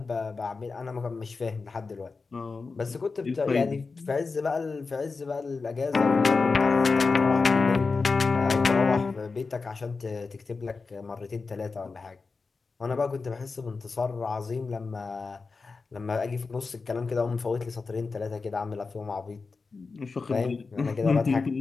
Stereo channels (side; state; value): right; quieter; 4.3 dB